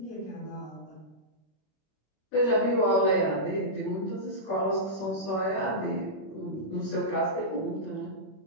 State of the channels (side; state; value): right; late; 26 ms